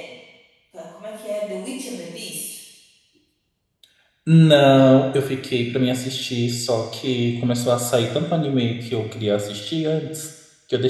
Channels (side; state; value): both; identical; correlation 1.00